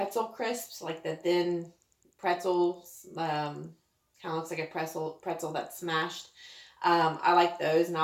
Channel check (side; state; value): both; identical; correlation 1.00